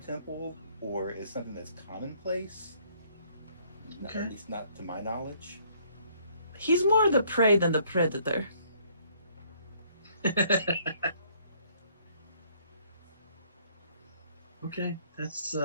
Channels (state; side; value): inverted; both; correlation -0.64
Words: or is something that's commonplace. Okay. At least not to my knowledge. He's more the prey than the predator. Okay, that's